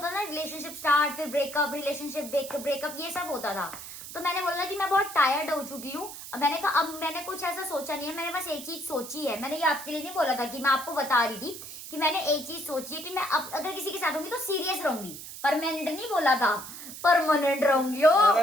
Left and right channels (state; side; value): noise; right; hiss, 12 dB below the sound